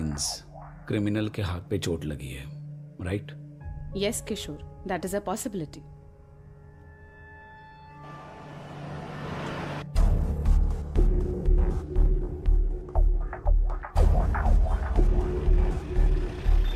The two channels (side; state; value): both; identical; correlation 1.00